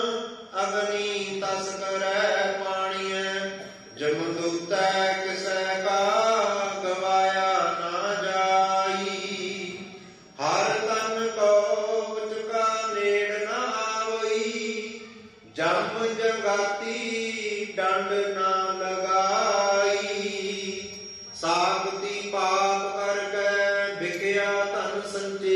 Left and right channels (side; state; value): both; identical; correlation 1.00